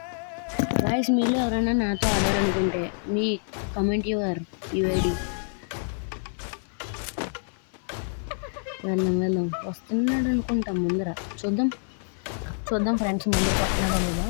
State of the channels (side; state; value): right; silent; digital silence